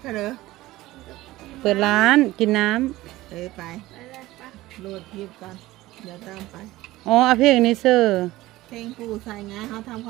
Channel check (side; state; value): left; quieter; 17.5 dB